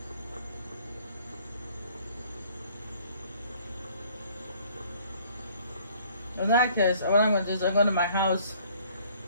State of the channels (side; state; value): both; inverted; correlation -0.59